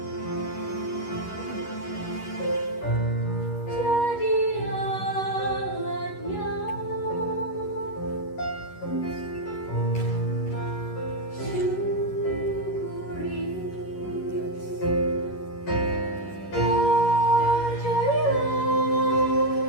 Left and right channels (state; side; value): late; right; 11 ms